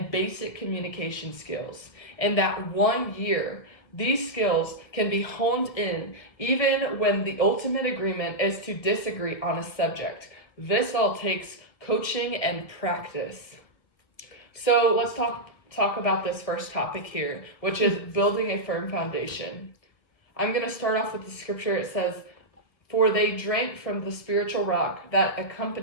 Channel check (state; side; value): late; right; 1.7 ms